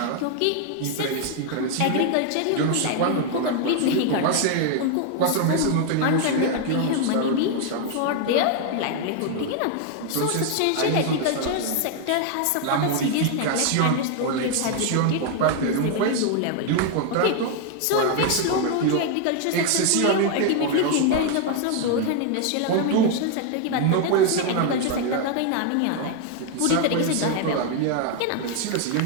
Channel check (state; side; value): different; both; correlation 0.00